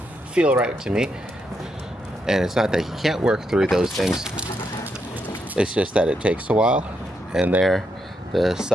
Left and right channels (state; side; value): normal; both; correlation 0.80